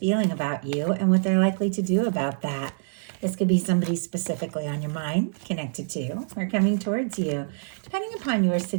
about you and what they're likely to do about that. This could be somebody specifically on your mind, connected to, or coming towards you, depending upon your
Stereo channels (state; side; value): silent; left; digital silence